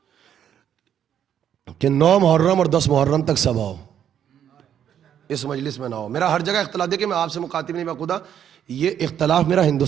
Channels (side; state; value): left; quieter; 9.5 dB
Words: کہ 9 محرم اور 10 محرم تک سب ہو, اس مجلس میں نہ ہو. میرا ہر جگہ اختلاف, دیکھیں میں آپ سے مخاطب نہیں, میں خدا یہ اختلاف میرا